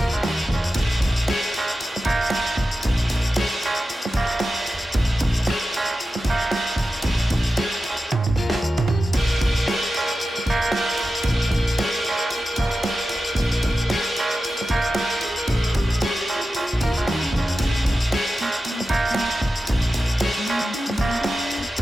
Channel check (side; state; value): both; normal; correlation 0.93